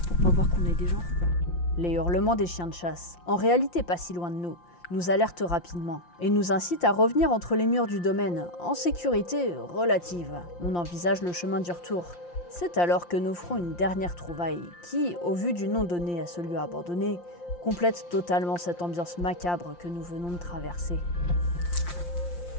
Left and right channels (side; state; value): right; late; 5.7 ms